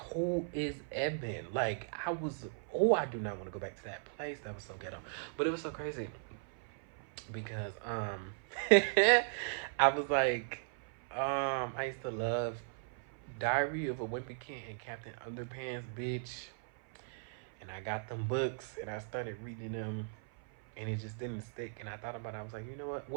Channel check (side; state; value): left; silent; 53 dB below the other